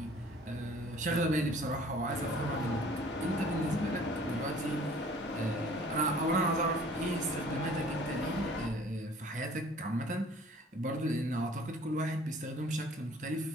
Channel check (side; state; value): both; normal; correlation 0.52